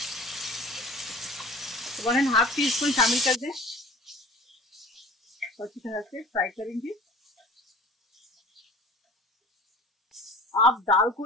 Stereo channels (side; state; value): both; normal; correlation 0.44